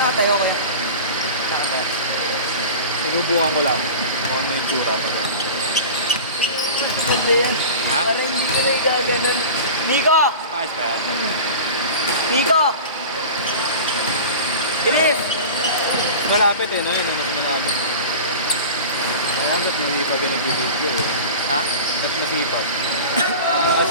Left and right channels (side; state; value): both; inverted; correlation -0.34